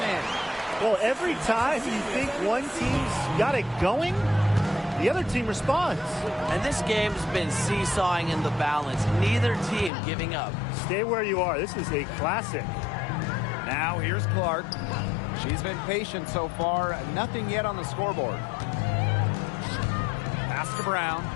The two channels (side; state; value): right; drops out; at 9.9 s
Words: in. Well, every time you think one team's got it going, the other team responds. And this game's been seesawing in the balance. Neither team giving up. Stay where you are. This is a classic. Now here's Clark. She's been patient so far. Nothing yet on the scoreboard. Pass to Brown.